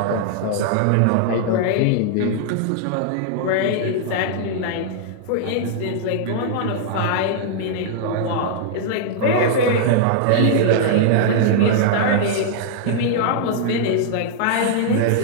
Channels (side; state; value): both; different; correlation -0.01